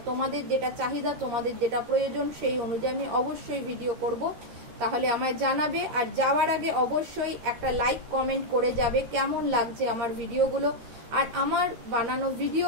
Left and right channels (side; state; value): left; late; 13 ms